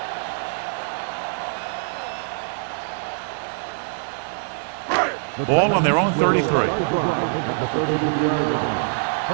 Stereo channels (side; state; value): left; silent; 63 dB below the other